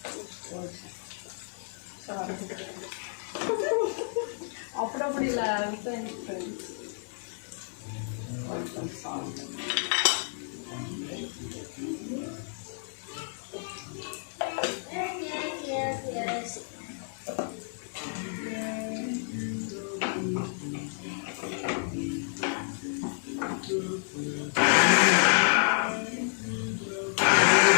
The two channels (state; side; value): silent; right; digital silence